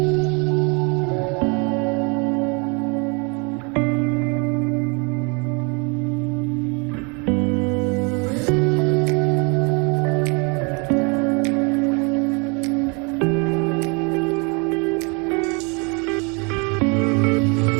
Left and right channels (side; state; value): left; quieter; 32.6 dB